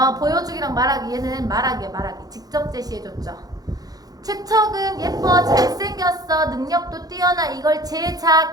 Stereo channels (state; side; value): late; left; 0.18 ms